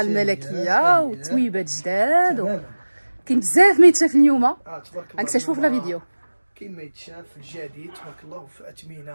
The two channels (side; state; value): both; inverted; correlation -1.00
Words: وتويبات جداد كاين بزاف ما يتشاف اليوم. غنكتشفوا في لا فيديو. كاين ما يتشاف في الجديد تبارك الله، في